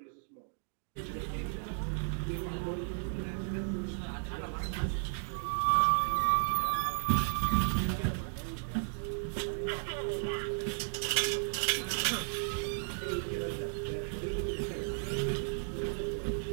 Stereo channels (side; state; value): left; silent; digital silence